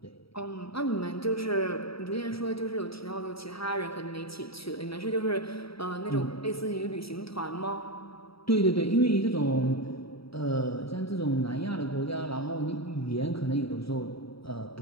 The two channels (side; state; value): right; late; 0.76 ms